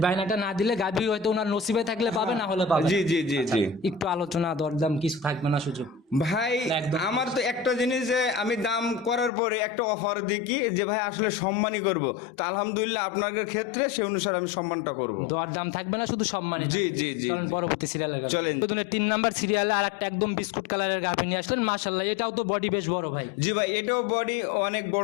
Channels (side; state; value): right; drops out; at 9.3 s